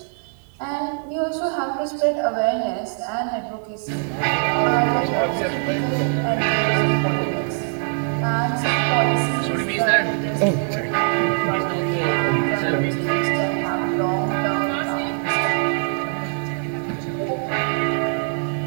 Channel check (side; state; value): left; silent; 56 dB below the other